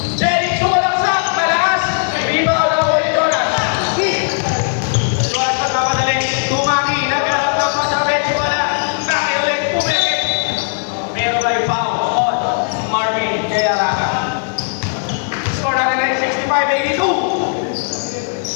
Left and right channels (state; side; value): silent; right; digital silence